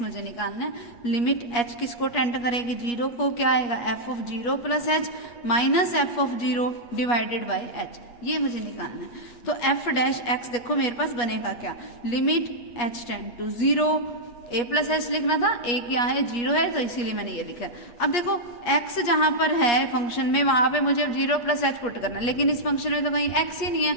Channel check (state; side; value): late; right; 8.4 ms